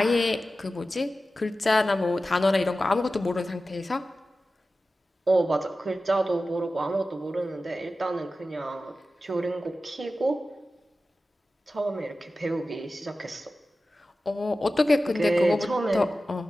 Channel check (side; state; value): both; normal; correlation 0.94